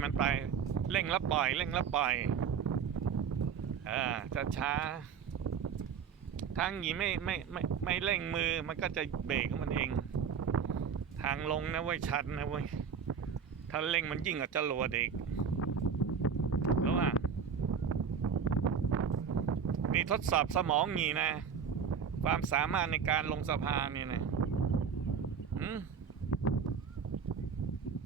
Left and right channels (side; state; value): left; quieter; 6.8 dB